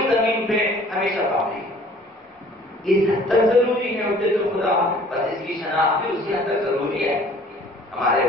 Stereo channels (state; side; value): normal; both; correlation 0.52